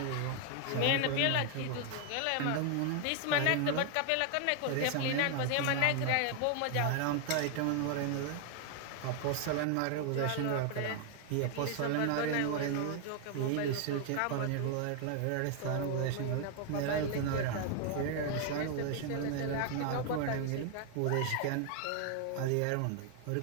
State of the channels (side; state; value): both; different; correlation 0.00